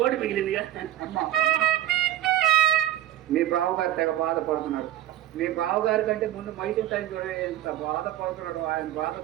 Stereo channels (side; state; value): left; quieter; 12.7 dB